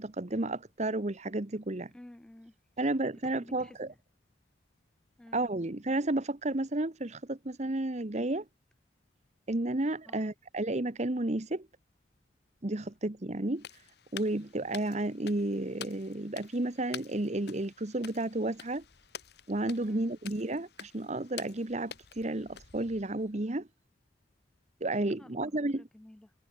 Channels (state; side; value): normal; both; correlation 0.51